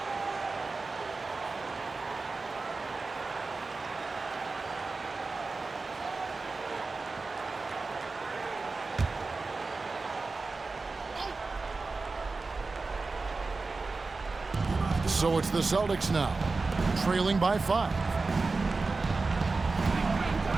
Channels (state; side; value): quieter; left; 3.9 dB